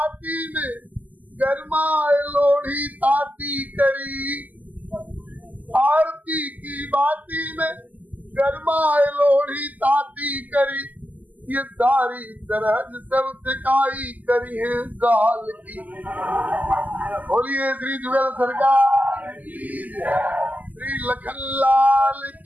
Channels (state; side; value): late; left; 0.080 ms